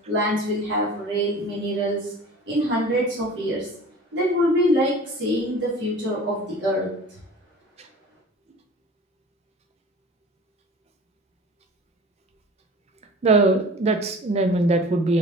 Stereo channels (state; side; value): normal; both; correlation 0.41